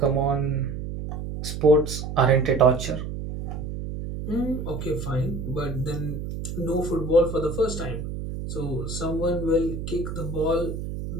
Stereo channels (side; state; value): right; noise; hum, 6 dB below the sound